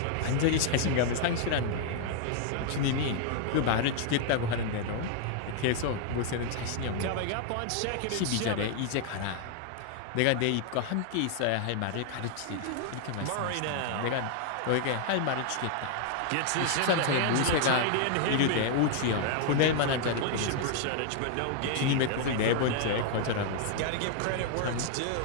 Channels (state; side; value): different; both; correlation 0.00